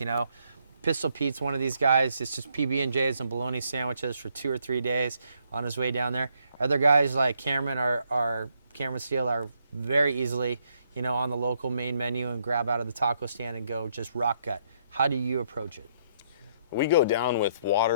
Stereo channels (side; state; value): both; inverted; correlation -0.73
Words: know. Pistol Pete's one of these guys. It's just PB&Js and bologna sandwiches for 2 or 3 days on his way down there. Other guys like Cameron Cameron Steele are very easily, you know, on the local main menu and grab out of the taco stand and go just rock gut. How do you approach it? We go down with